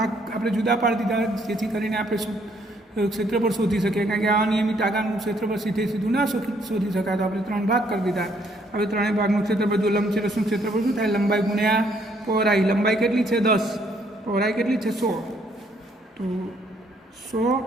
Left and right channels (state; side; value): normal; both; correlation 0.68